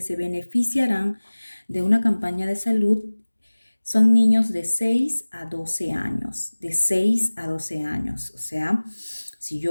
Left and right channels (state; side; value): inverted; both; correlation -1.00